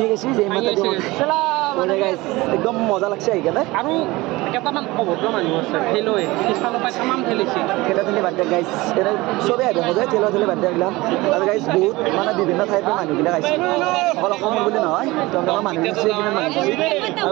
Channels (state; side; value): quieter; left; 20.8 dB